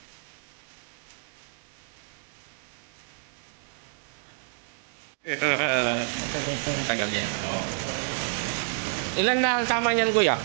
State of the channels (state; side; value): silent; left; digital silence